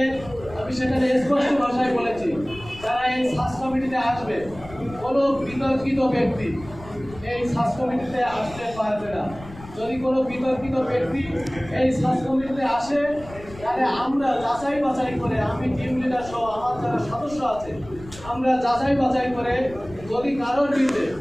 আমি সেখানে স্পষ্ট ভাষায় বলেছি যারা এই সাস কমিটিতে আসবে কোনো বিতর্কিত ব্যক্তি এই সাস কমিটিতে আসতে পারবে না। যদি কোনো বিতর্কিত ব্যক্তি এই সাস কমিটিতে আসে তাহলে আমরা যাচাই বাছাই করে আমি টিম লিডার সহ আমার যারা সদস্য আছে আমরা যাচাই বাছাই করে যদি কারোর বিরুদ্ধে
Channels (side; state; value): left; noise; rumble, 17 dB below the sound